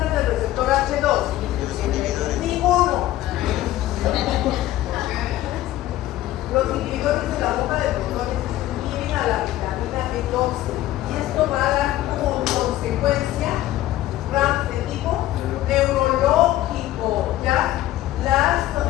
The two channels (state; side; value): quieter; right; 14.8 dB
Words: del receptor H2? Ninguno. Los inhibidores de la bomba de protones inhiben a la vitamina B12 y esto va a dar como consecuencia RAMS de tipo neurológico, ¿ya?